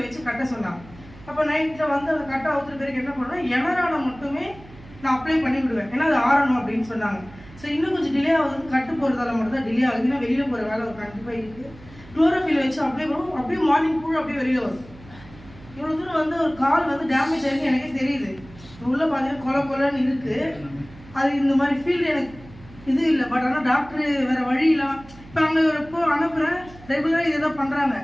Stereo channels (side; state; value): right; noise; hum, 20 dB below the sound